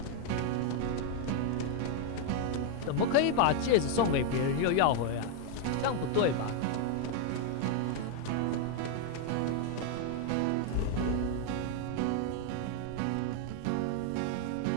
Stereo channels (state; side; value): different; both; correlation 0.00